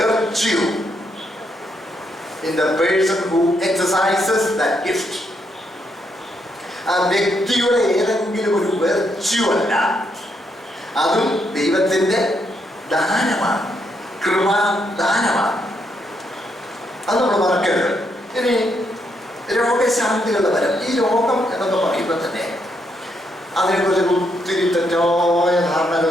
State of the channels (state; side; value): normal; both; correlation 0.77